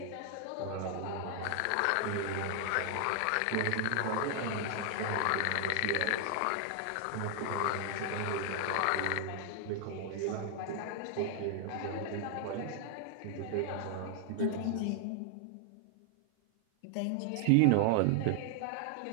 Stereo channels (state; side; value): different; both; correlation 0.00